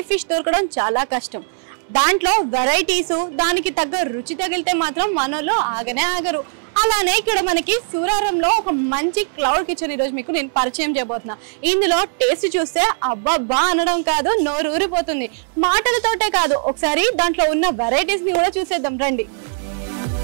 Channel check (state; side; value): silent; left; 66 dB below the other